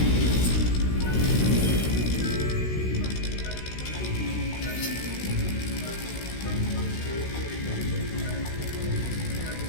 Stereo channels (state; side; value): late; right; 16 ms